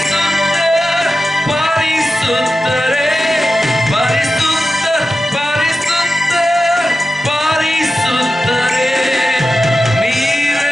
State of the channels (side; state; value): both; normal; correlation 0.92